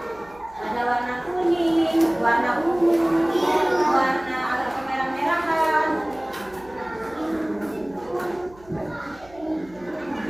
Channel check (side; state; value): right; noise; hum, 25 dB below the sound